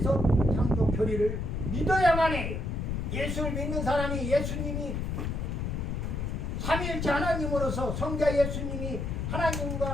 창조 교리를 믿어야만 해요. 예수를 믿는 사람이 예수님이 삼위일체 하나님으로서 성자 예수님이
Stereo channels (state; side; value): noise; left; rumble, 2 dB below the sound